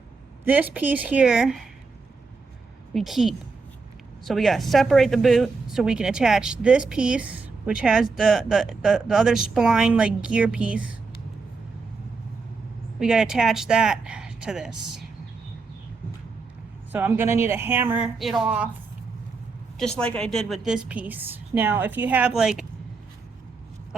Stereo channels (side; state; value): left; quieter; 4.3 dB